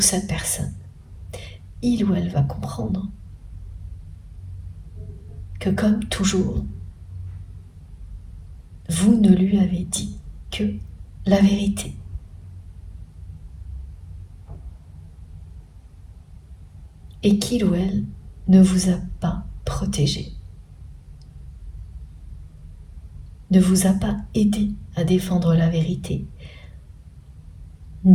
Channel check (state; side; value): identical; both; correlation 1.00